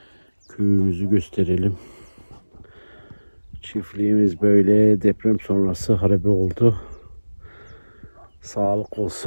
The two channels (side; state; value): both; inverted; correlation -1.00